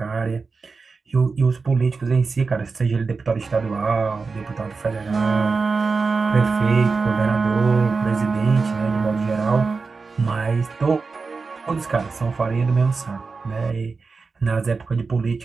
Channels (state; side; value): quieter; left; 4.5 dB